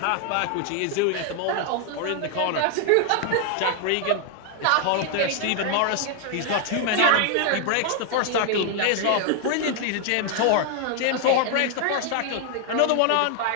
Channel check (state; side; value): different; both; correlation 0.00